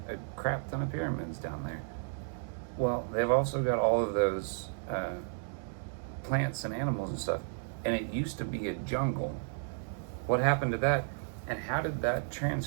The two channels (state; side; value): silent; left; digital silence